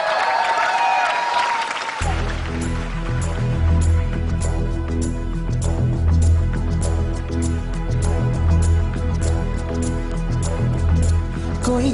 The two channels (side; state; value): both; identical; correlation 1.00